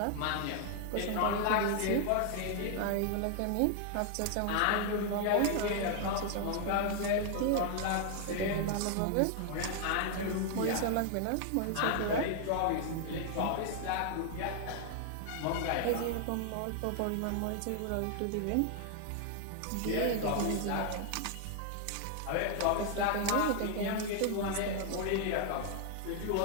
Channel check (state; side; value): different; both; correlation 0.00